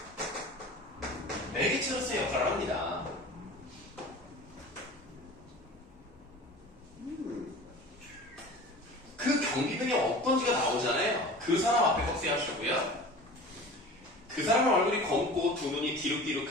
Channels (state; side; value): normal; both; correlation 0.38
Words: 매개체로서의 역할을 합니다. 그 경비병이 어떤지가 나오잖아요. 그 사람 앞에 꺽쇠하시고요. 그 사람의 얼굴이 검고 두 눈이